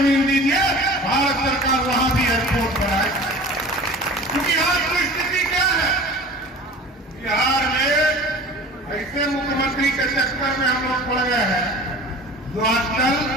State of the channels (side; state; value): both; normal; correlation 0.40